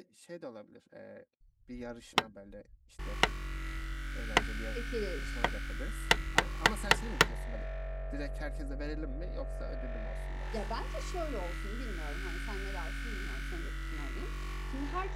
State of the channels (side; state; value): both; identical; correlation 1.00